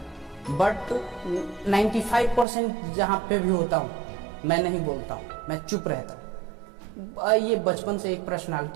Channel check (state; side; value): drops out; left; at 2.5 s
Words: बट 95% जहाँ पे भी होता हूँ मैं नहीं बोलता हूँ, मैं चुप रहता हूँ। ये बचपन से एक